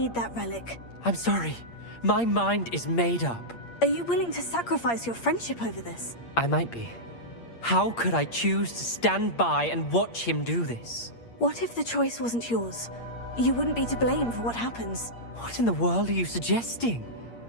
that relic. I'm sorry. My mind is made up. Are you willing to sacrifice your friendship over this? I might be. How could I choose to stand by and watch him do this? What if the choice wasn't yours? You wouldn't be to blame for what happens. What in the world are you suggesting?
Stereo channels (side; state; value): right; late; 8.6 ms